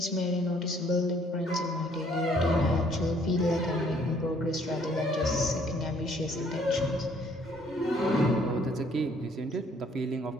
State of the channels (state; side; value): normal; both; correlation 0.62